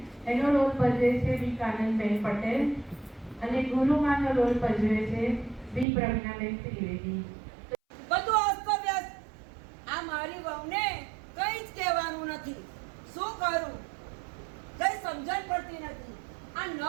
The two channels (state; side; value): drops out; left; at 5.9 s